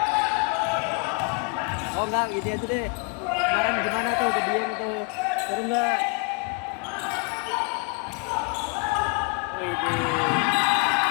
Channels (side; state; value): right; quieter; 31.8 dB